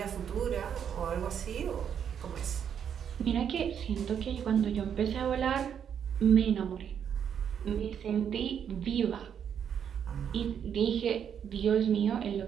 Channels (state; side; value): quieter; left; 8.3 dB